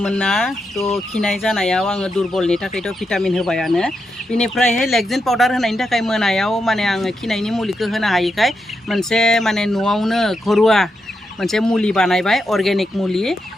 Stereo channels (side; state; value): both; normal; correlation 0.85